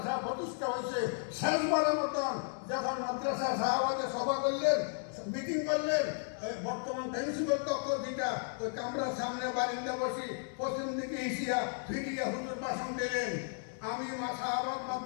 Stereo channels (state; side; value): silent; right; 55 dB below the other